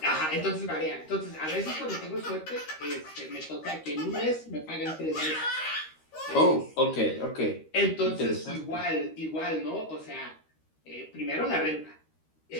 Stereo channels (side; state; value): right; late; 13 ms